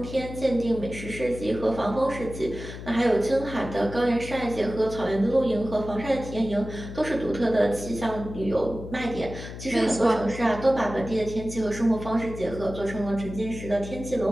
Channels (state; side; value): noise; left; hum, 11 dB below the sound